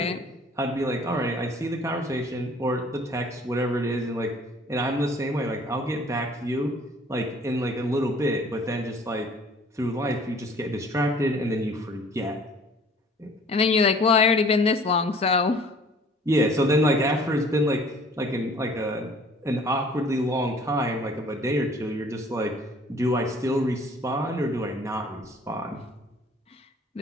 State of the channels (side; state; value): both; normal; correlation 0.52